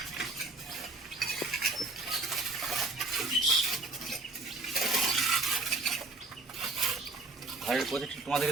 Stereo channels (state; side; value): quieter; left; 3.3 dB